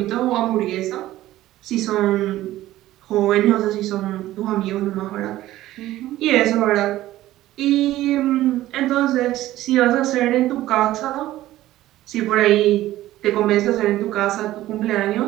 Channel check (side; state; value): left; quieter; 15.1 dB